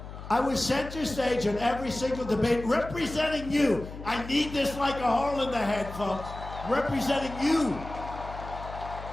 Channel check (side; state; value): left; noise; hum, 12 dB below the sound